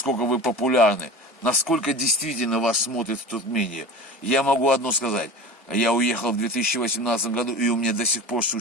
вы популярны, насколько действительно вас смотрят в Туркмении. Я могу одно сказать, я уехал в 2018 году, и у меня до сих пор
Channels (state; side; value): normal; both; correlation 0.34